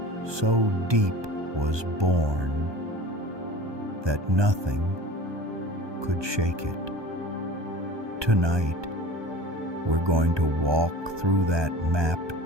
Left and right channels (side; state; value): left; late; 1.2 ms